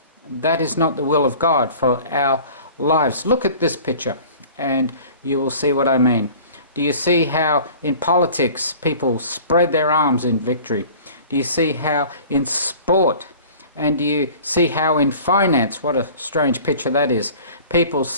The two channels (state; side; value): inverted; both; correlation -0.44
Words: That is not the will of God for our lives. Look at this picture and you will see what I mean. Do you see how in politics people spread their arms in victory? Do you see how in sport? And do you see how in finance, what a strange picture that is, people